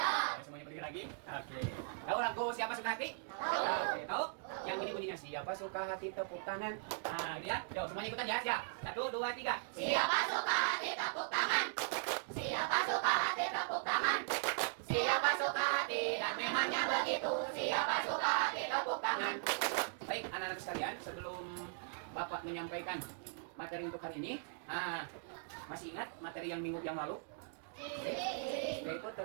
Semuanya berdiri lagi? Oke. Tahu lagu Siapa Suka Hati? Oke, tahu? Yang ini bunyinya Siapa Suka Hati tepuk tangan. Nah, ini ya. Yuk, semuanya ikutan ya. Siap. 1, 2, 3. Siapa suka hati tepuk tangan. Siapa suka hati tepuk tangan. Siapa suka hati dan memangnya begitu. Siapa suka hati tepuk tangan. Baik, anak-anak sekalian, sebelum Bapak menyampaikan materi untuk hari ini, masih ingat materi yang minggu yang lalu? Yaitu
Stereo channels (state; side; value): silent; left; digital silence